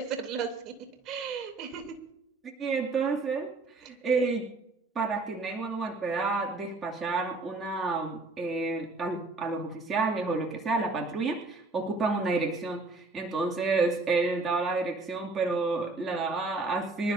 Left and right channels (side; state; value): left; quieter; 3.4 dB